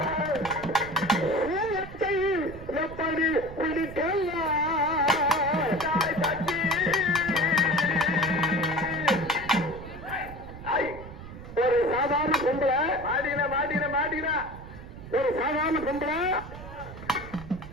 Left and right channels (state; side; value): noise; right; rumble, 13 dB below the sound